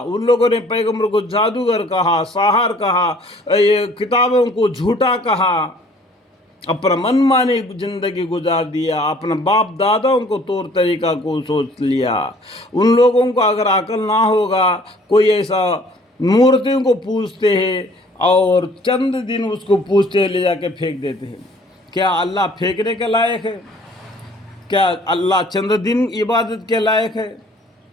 ان لوگوں نے پیغمبر کو جادوگر کہا، ساحر کہا، یہ کتابوں کو جھوٹا کہا، اپنا منمانی زندگی گزار دیا، اپنا باپ داداؤں کو طور طریقہ کو سوچ لیا۔ ان لوگوں کو اگر عقل نہ ہوگا، کوئی ایسا مورتیوں کو پوجتے ہیں اور چند دن اس کو پوجتے ہیں، لے جا کے پھینک دیتے ہیں۔ کیا اللہ پھینکنے کے لائق ہے؟ کیا اللہ چند دن عبادت کے لائق ہے؟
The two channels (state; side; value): normal; both; correlation 0.56